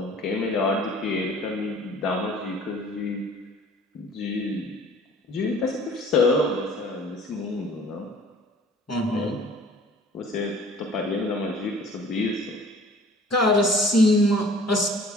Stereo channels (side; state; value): both; normal; correlation 0.50